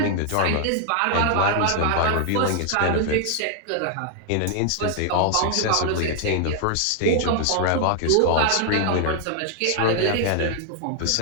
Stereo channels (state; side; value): different; both; correlation 0.00